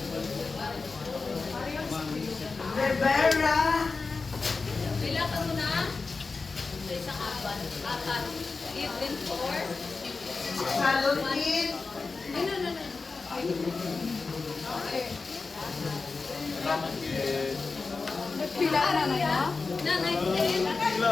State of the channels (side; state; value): right; quieter; 4.2 dB